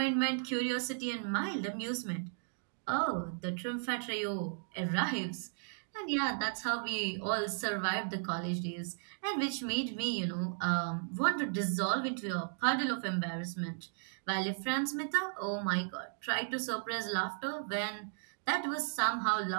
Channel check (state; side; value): silent; left; digital silence